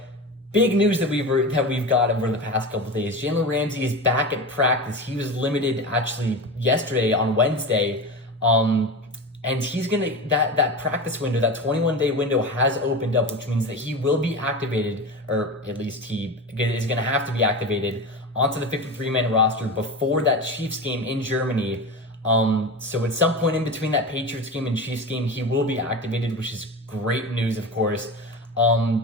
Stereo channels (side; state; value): both; normal; correlation 0.26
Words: big news that we've got over the past couple of days. Jalen Ramsey is back at practice. He was limited actually yesterday on Wednesday, and he's gonna that practice window, that 21-day window, has opened up, which means that he will be activated, or at least he is gonna have to be activated onto the 53-man roster before that Chiefs game in Germany. So at some point in between that Patriots game and Chiefs game, he will be activated, which is great news, of course.